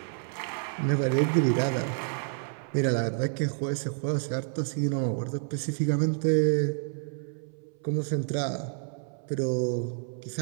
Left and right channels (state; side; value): silent; left; 58 dB below the other